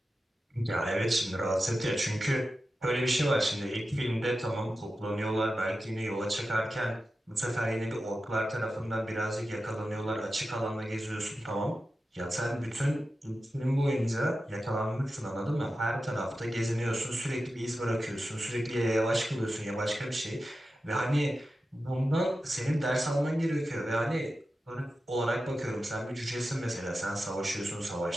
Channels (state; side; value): normal; both; correlation 0.92